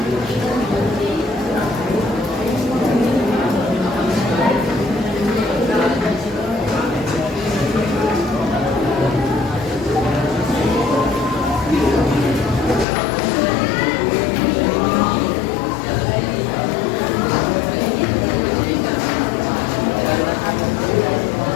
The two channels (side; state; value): right; drops out; at 12.9 s